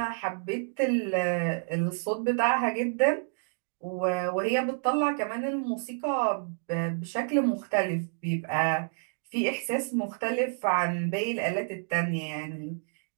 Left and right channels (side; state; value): left; silent; digital silence